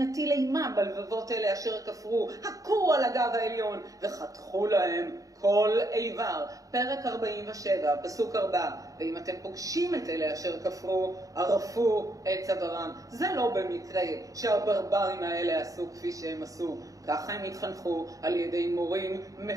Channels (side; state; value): left; late; 0.16 ms